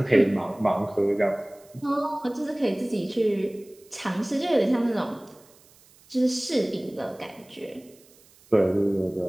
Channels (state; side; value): noise; right; hiss, 28 dB below the sound